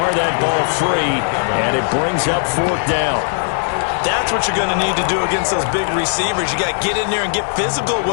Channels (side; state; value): right; silent; 68 dB below the other